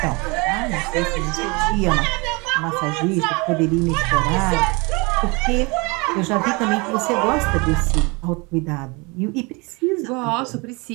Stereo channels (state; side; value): quieter; left; 27.9 dB